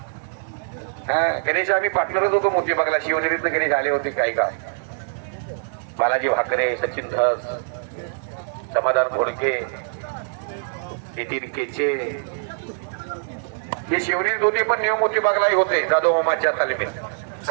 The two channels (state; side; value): silent; left; 63 dB below the other